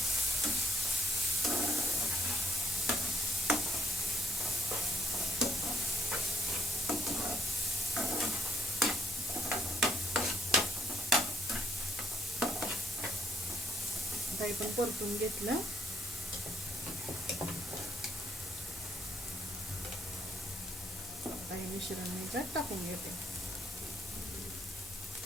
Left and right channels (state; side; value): normal; both; correlation 0.73